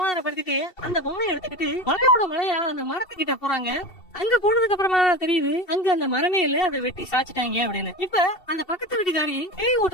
அந்த பொம்மையை எடுத்துக்கிட்டு மலையோட மலையா அந்த மரத்துக்கிட்ட போறாங்க. அங்க போனதுக்கு அப்புறமா தெரியுது அங்க அந்த மரமே இல்ல, அதை வெட்டி சாச்சிட்டாங்க அப்படின்னு. இப்ப அந்த பக்கத்து வீட்டுக்காரி பேய்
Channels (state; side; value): late; right; 2.7 ms